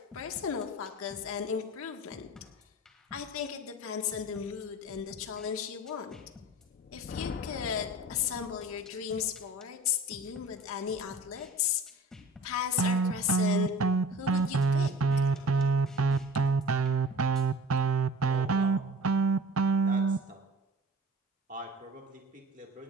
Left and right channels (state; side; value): normal; both; correlation 0.41